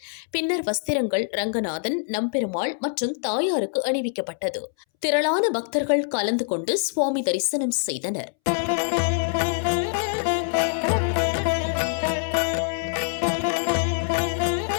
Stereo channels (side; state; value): right; silent; 62 dB below the other